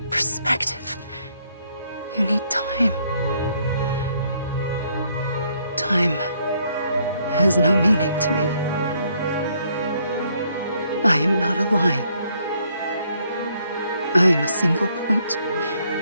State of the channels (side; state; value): both; inverted; correlation -0.69